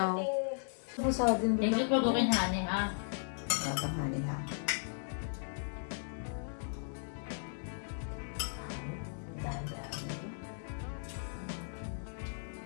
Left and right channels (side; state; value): right; silent; digital silence